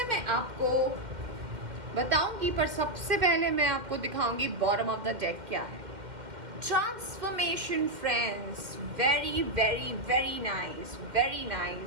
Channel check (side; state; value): left; late; 2.1 ms